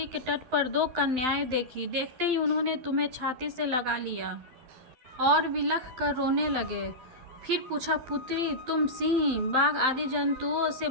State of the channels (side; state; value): left; late; 12 ms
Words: के तट पर दो कन्याएं देखी। देखते ही उन्होंने तुम्हें छाती से लगा लिया और विलख कर रोने लगे। फिर पूछा, पुत्री, तुम सिंह, बाघ आदि जंतुओं से